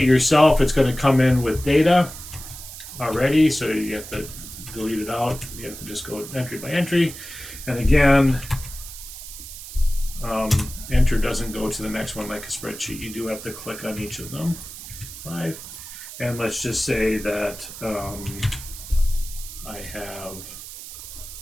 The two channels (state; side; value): noise; right; hiss, 12 dB below the sound